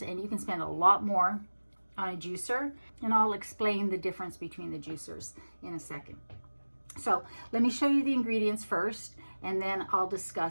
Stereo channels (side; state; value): both; inverted; correlation -1.00